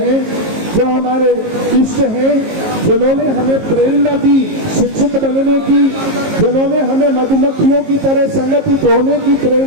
जो हमारे इष्ट हैं, जिन्होंने हमें प्रेरणा दी शिक्षित बनने की, जिन्होंने हमें मधुमक्खियों की तरह संगठित होने की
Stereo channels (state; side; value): late; left; 19 ms